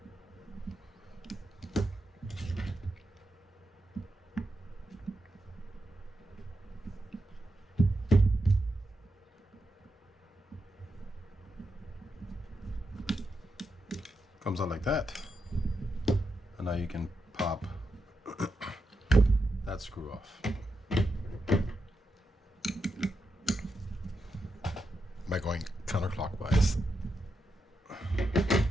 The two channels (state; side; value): normal; both; correlation 0.86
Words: Comes out like that, and now you can pop that screw off by going counterclockwise.